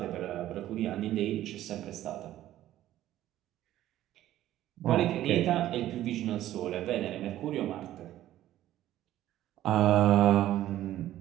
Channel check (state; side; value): quieter; left; 13.5 dB